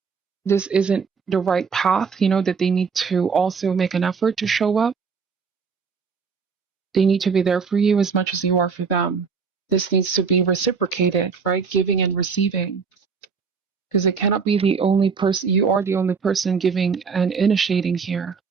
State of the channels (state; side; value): quieter; left; 5.7 dB